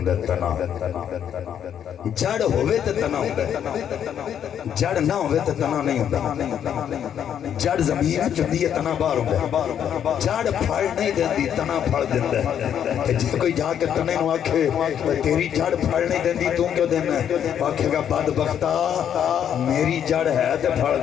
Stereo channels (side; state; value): right; quieter; 9.2 dB